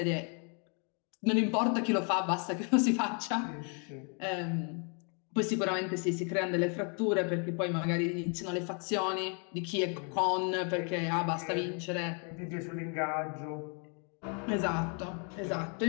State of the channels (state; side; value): quieter; right; 38.2 dB